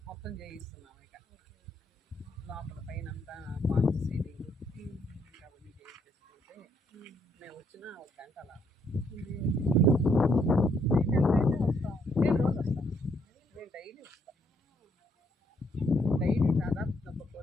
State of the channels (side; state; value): both; normal; correlation 0.71